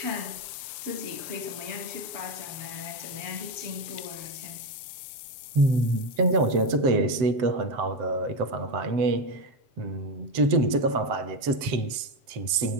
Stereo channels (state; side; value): late; left; 7.8 ms